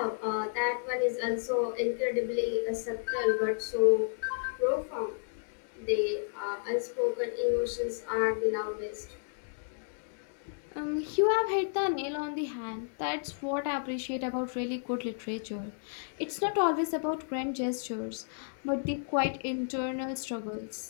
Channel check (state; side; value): silent; right; digital silence